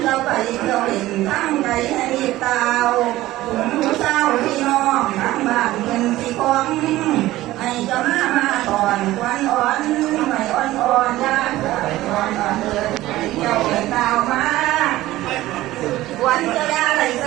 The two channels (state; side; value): quieter; left; 16.3 dB